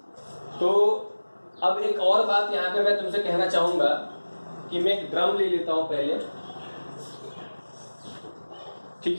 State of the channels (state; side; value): inverted; both; correlation -1.00